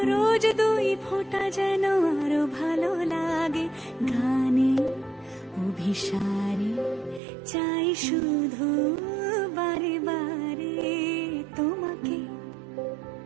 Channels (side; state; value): left; drops out; at 7.2 s